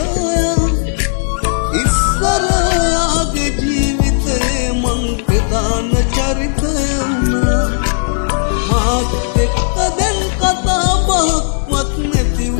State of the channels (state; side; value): silent; right; digital silence